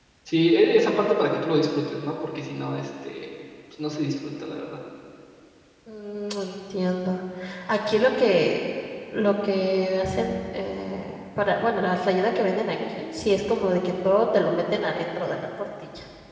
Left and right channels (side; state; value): both; identical; correlation 1.00